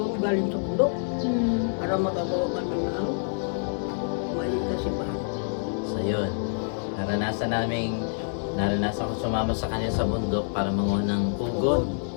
galing sa bundok. Para magagawa kami ng maliit na simbahan. So yun, naranasan ko sumama sa kanya sa bundok para manguha ng kugon.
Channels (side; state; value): right; silent; 60 dB below the other